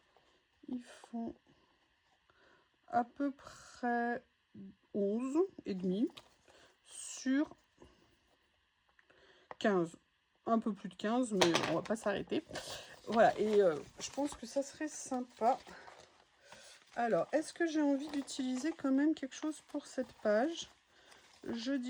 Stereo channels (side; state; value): both; identical; correlation 1.00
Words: Ils font à peu près 11 et demi sur 15. Un peu plus de 15, mais on va pas s'arrêter. Voilà, et je pense que ça serait sympa. Alors, est-ce que j'ai envie d'utiliser quand même quelque chose pour cette page? Je